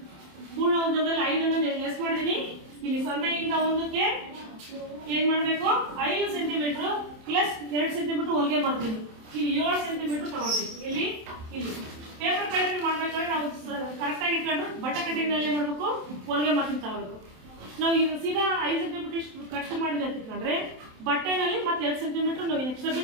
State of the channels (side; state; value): left; late; 27 ms